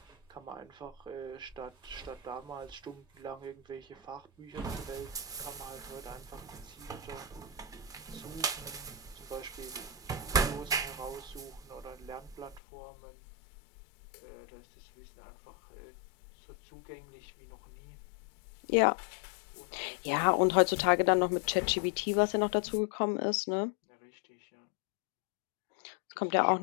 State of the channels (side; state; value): right; drops out; at 12.6 s